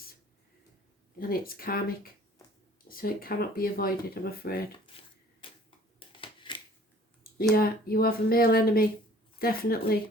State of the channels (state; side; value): normal; both; correlation 0.52